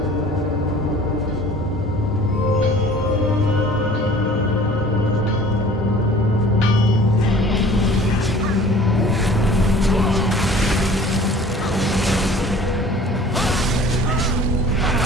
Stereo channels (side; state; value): both; normal; correlation 0.48